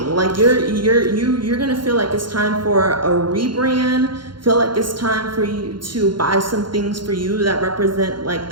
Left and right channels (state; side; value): late; left; 0.72 ms